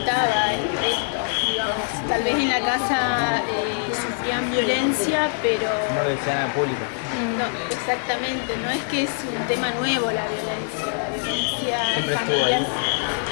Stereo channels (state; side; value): silent; right; digital silence